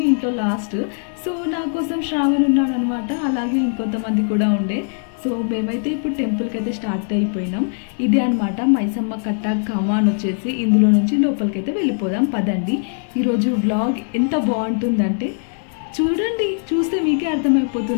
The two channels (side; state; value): right; silent; 57 dB below the other